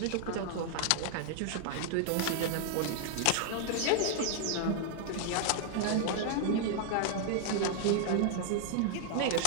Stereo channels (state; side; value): different; both; correlation -0.01